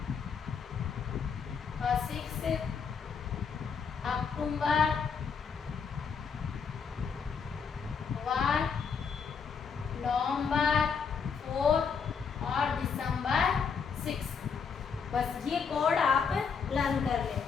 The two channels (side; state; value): right; quieter; 6.1 dB